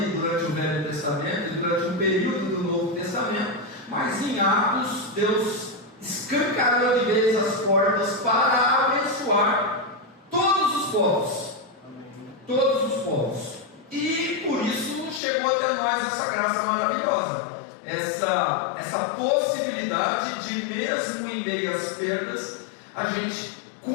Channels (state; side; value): drops out; right; at 15.2 s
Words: durante o Velho Testamento e durante um período do Novo Testamento. Mas em Atos, Deus escancarou de vez as portas para abençoar todos os povos. Todos os povos. E por isso chegou até nós essa graça maravilhosa. Essa possibilidade de, mesmo em meio às perdas, a gente